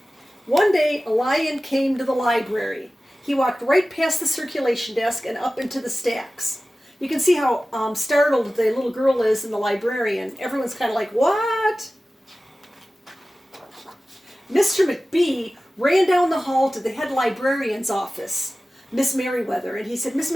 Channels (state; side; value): normal; both; correlation 0.96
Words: One day, a lion came to the library. He walked right past the circulation desk and up into the stacks. You can see how startled the little girl is and the librarian. Everyone's kind of like, what? Mr. McBee ran down the hall to the head librarian's office, Miss Merriweather, and he said, Miss